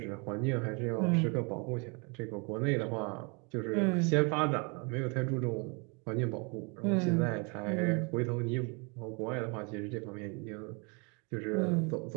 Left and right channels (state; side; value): quieter; left; 32.5 dB